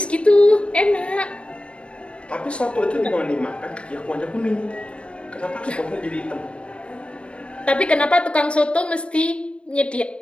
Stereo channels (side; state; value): right; late; 0.058 ms